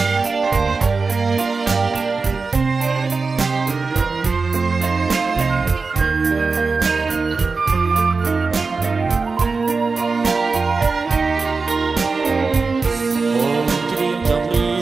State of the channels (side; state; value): left; quieter; 4.3 dB